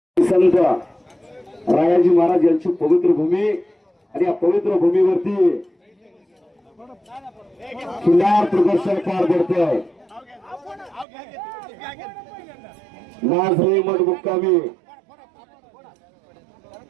संत रायाजी महाराज यांची पवित्र भूमी आणि या पवित्र भूमीवरती खिल्लार प्रदर्शन पार पडतंय। नाझरे मठ मुक्कामी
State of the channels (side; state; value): left; drops out; at 11.1 s